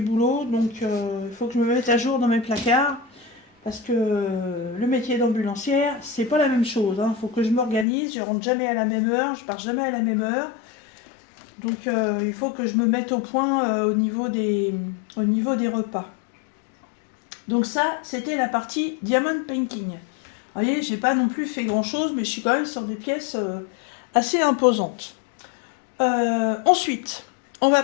boulot. Donc il faut que je me mette à jour dans mes placards. Parce que le métier d'ambulancière, c'est pas la même chose. Il faut que je m'organise. Je rentre jamais à la même heure. Je pars jamais à la même heure. Donc il faut que je me mette au point au niveau des repas. Donc ça, c'était la partie Diamond Painting. Vous voyez, j'ai pas non plus fait grand chose, mais je suis quand même sur des pièces assez imposantes. Ensuite, on va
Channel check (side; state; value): right; drops out; at 7.9 s